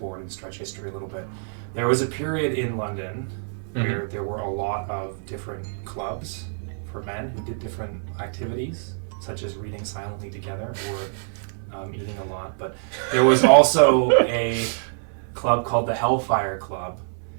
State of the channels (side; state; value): left; silent; 62 dB below the other